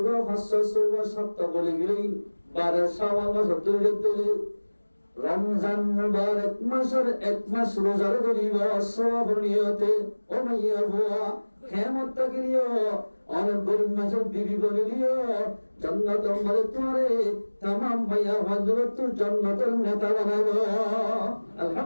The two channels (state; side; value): inverted; both; correlation -1.00